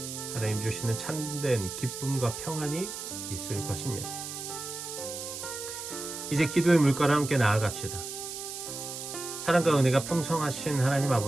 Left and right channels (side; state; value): right; noise; hiss, 8 dB below the sound